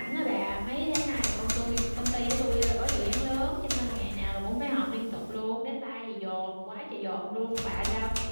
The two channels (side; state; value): both; inverted; correlation -1.00